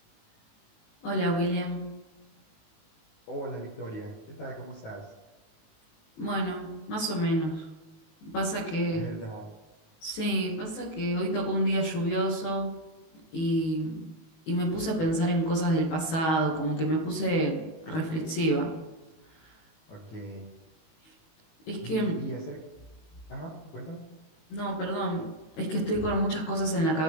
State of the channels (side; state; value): right; late; 19 ms